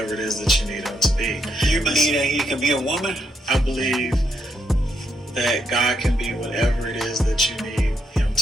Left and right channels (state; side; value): normal; both; correlation 0.78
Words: it is that you need Him to be. Do you believe that he can be a woman? I believe that God can be whatever it is that you need Him